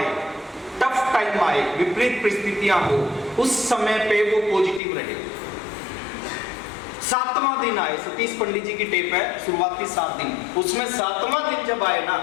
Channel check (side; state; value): right; drops out; at 4.8 s